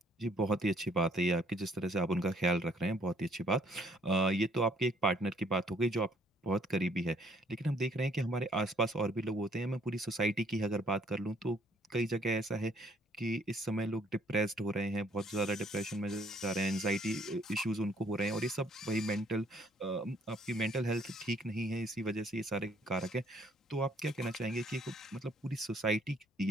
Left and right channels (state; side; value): normal; both; correlation 0.64